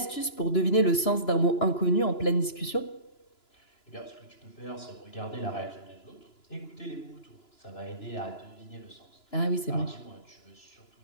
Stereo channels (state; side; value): late; right; 2.9 ms